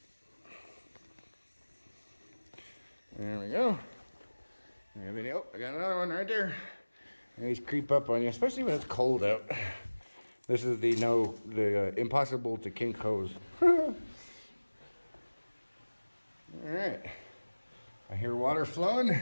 There we go. Oh, I got another one right there. These creep up on you, especially when it's cold out. This is the impossible to kink hose. All right, I hear water flowing.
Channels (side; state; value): both; inverted; correlation -1.00